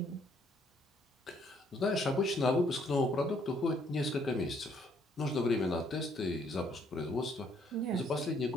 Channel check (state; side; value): normal; both; correlation 0.67